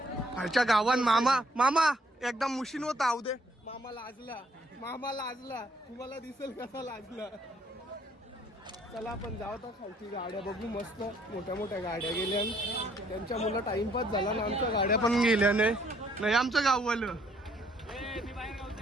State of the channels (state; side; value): normal; both; correlation 0.66